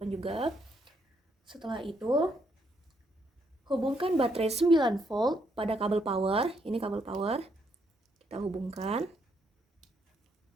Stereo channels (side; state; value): both; normal; correlation 0.74